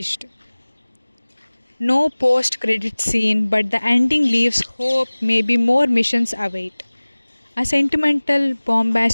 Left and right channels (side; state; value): both; inverted; correlation -1.00